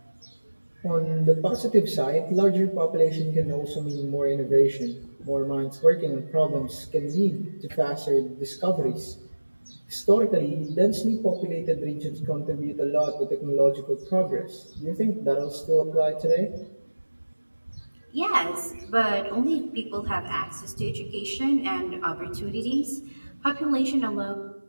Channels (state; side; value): inverted; both; correlation -1.00